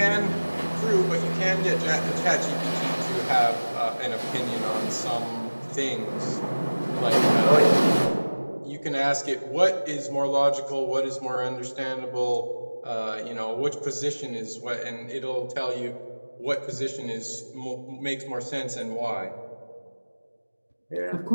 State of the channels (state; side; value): inverted; both; correlation -1.00